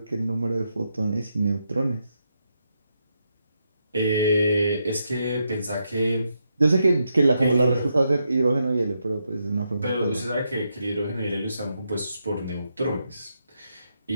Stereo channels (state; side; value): inverted; both; correlation -0.82